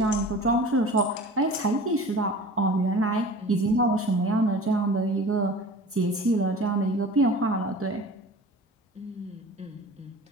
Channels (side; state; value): both; normal; correlation 0.40